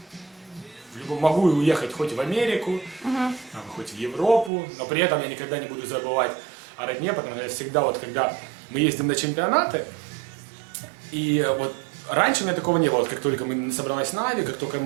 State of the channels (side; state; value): left; drops out; at 4.5 s